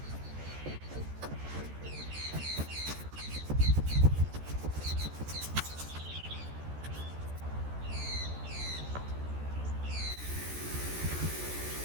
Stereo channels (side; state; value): left; late; 14 ms